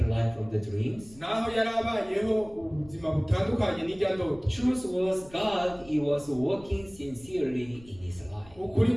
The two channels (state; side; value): noise; left; rumble, 23 dB below the sound